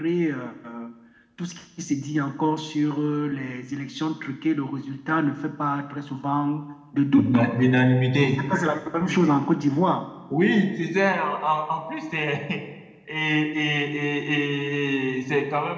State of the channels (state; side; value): identical; both; correlation 1.00